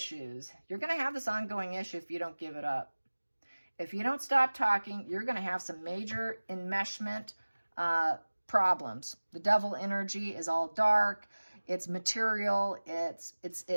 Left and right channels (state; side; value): inverted; both; correlation -1.00